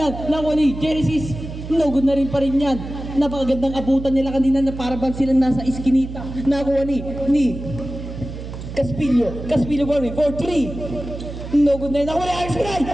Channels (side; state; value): right; noise; hum, 10 dB below the sound